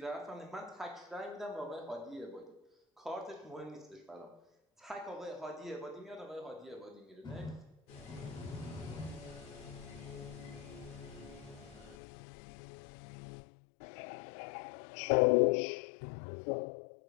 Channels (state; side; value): drops out; right; at 12.0 s